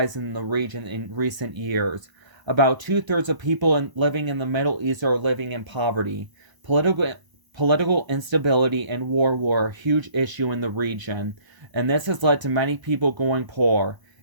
in the region in recent years. About 2/3 of people living in the Middle East are living in poverty. Political instability and war were a huge issue in the region, and this has led to many people going poor.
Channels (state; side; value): late; left; 1.0 ms